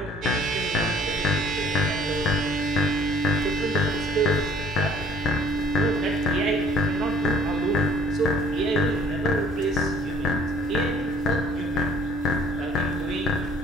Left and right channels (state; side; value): normal; both; correlation 0.56